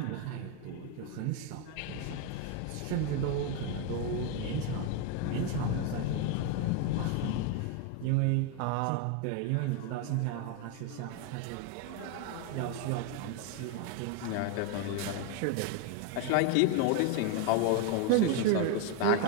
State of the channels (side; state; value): both; different; correlation 0.01